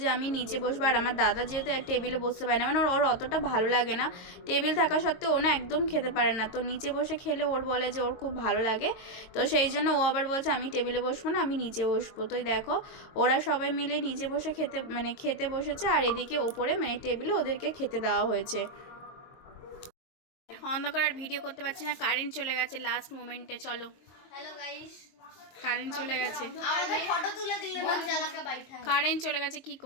যে আমি নিচে বসবো, আর আমার দাদা যেহেতু টেবিলে বসতে পারে না, মানে ওর অতটা ভালো লাগে না, টেবিল থাকা সত্ত্বেও ও না একদম খেতে পারে না, তো নিচে বসে খেলে ওর বলে যে ওর খুব ভালো লাগে, তো সেই জন্য ও আবার বলছে আমি টেবিলে বসবো না, আমি নিচে বসবো। তো দেখো ওরা সবাই মিলে নিচে বসে খেতে বসেছে, আর এদিকে ওপরে মানে টেবিলে ওদেরকে খেতে দেওয়া হয়েছে। অন্ধকার আর ভিডিও করতে পারছি না, কারেন্ট চলে গেছে লাস্ট মোমেন্টে। চলো, হ্যালো গাইস, কারেন্ট চলে গেছে, আমাদের ফটো তুলে দিলে না জ্বালাকে বাইঠা কারেন্ট চলে গেছে, কি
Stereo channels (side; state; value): right; late; 22 ms